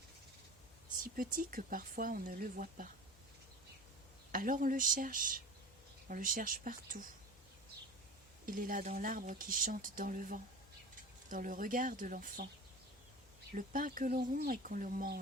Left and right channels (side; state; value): both; normal; correlation 0.35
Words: Si petit que parfois on ne le voit pas. Alors on le cherche partout. Il est là dans l'arbre qui chante dans le vent, dans le regard de l'enfant, le pain que l'on rompt et qu'on le